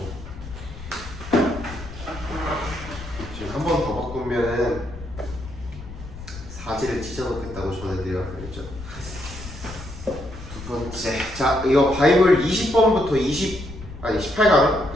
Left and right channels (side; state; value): left; noise; rumble, 13 dB below the sound